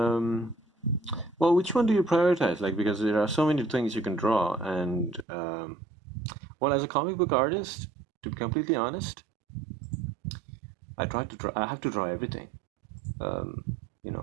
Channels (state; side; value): drops out; left; at 5.2 s